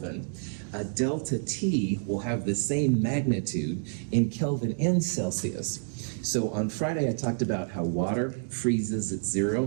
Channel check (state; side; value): silent; left; digital silence